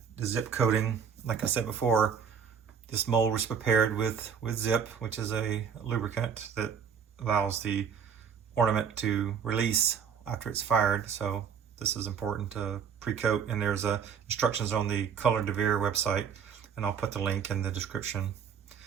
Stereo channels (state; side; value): quieter; left; 7.2 dB